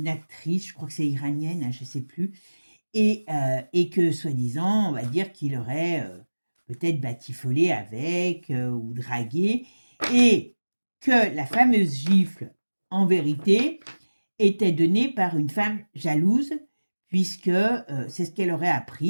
actrice, je crois que c'est iranienne, hein, je ne sais plus, et que soi-disant, on va dire qu'il aurait peut-être batifolé avec ou dragué, et que la fameuse gifle, en vérité, était donnée par une femme jalouse, puisque c'est ce qu'elle aurait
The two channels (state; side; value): inverted; both; correlation -1.00